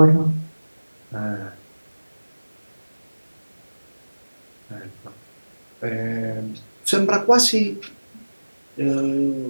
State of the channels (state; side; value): inverted; both; correlation -1.00